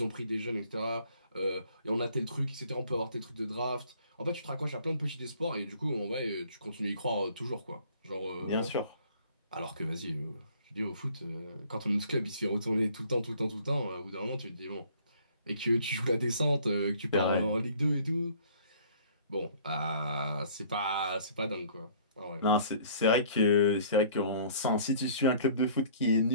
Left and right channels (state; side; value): inverted; both; correlation -0.55